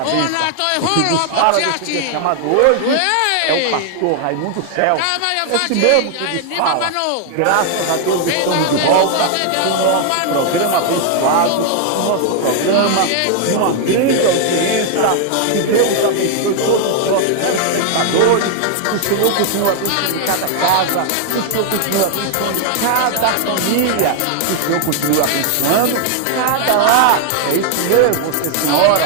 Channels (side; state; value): both; different; correlation 0.00